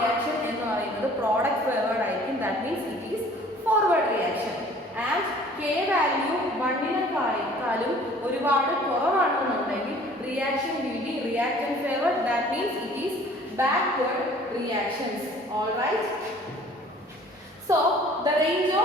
എന്ന് പറയുന്നത് പ്രോഡക്റ്റ് ഫേവേർഡ് ആയിരിക്കും. That means it is forward reaction. And K value 1-നേക്കാളും ഒരുപാട് കുറവാണെന്നുണ്ടെങ്കിൽ reaction will be reactant favoured. That means it is backward reactions. All right. So the range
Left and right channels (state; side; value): normal; both; correlation 0.51